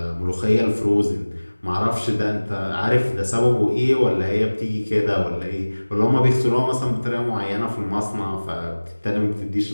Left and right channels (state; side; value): inverted; both; correlation -1.00